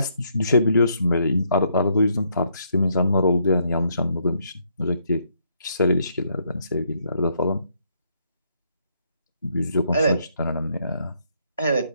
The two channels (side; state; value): both; inverted; correlation -0.73